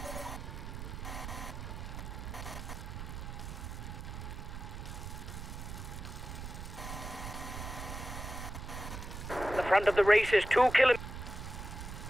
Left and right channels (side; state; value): right; noise; rumble, 8 dB below the sound